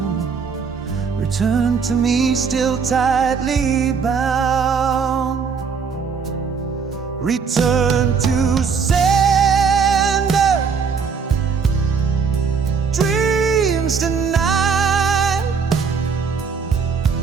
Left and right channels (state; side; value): quieter; left; 5.9 dB